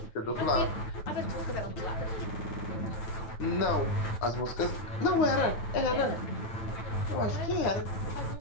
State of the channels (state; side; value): late; right; 9.6 ms